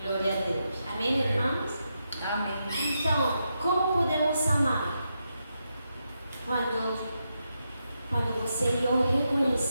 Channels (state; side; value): inverted; both; correlation -0.85